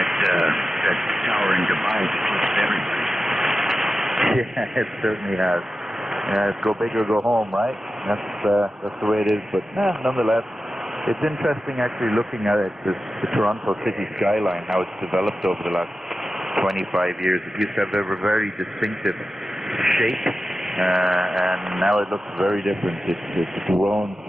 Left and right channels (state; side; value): normal; both; correlation 0.93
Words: that tower in Dubai that eclipsed everybody. Yeah, it certainly has. Go big or go home, right? That's the way it is. But nonetheless, it's interesting actually looking at it, the Toronto city skyline, how it's developed over the last 25 years. It used to have a very distinctive shape, and now it looks very different. It's grown